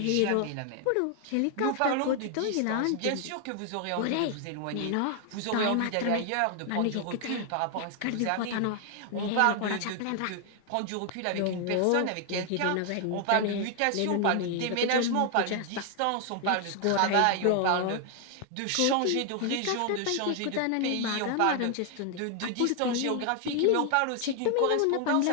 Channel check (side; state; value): both; different; correlation 0.00